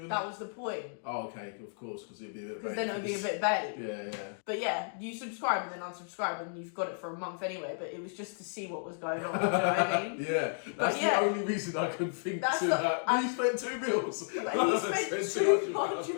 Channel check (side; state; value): right; silent; digital silence